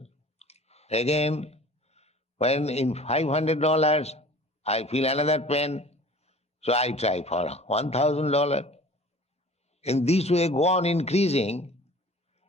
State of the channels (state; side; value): normal; both; correlation 0.45